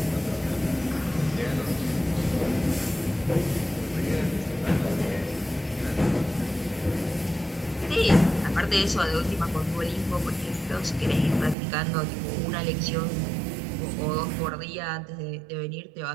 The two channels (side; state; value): left; drops out; at 11.6 s